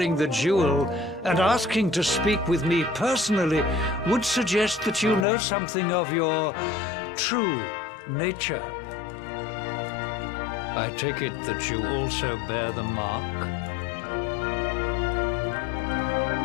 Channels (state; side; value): drops out; right; at 5.2 s